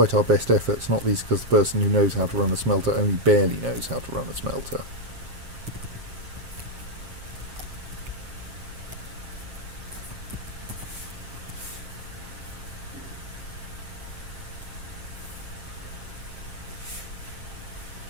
our best efforts, not least because the person who knows how to run a smelter only barely knows how to run a smelter.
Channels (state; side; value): late; left; 7.5 ms